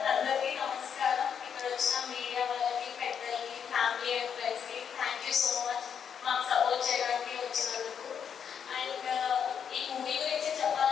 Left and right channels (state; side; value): quieter; right; 7.6 dB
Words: అందరికీ నమస్కారం. ఇక్కడ వచ్చిన మీడియా వాళ్ళకి, పెద్దలకి, ఫ్యామిలీ అండ్ ఫ్రెండ్స్కి థ్యాంక్ యూ సో మచ్ మాకు సపోర్ట్ చేయడానికి వచ్చినందుకు. అండ్ ఈ మూవీ గురించి